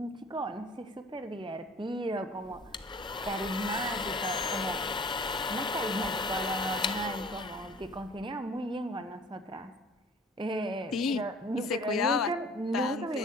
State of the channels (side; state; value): both; normal; correlation 0.48